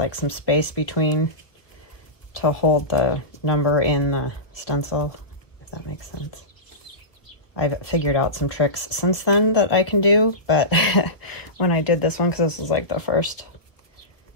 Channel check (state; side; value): late; right; 1.3 ms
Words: some space between to hold the number in the stencil, if that makes sense. I've figured out some tricks since then that I can do, but when I did this one, because this was like the first